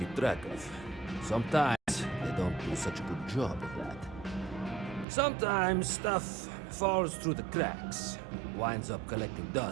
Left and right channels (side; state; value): left; drops out; at 5.1 s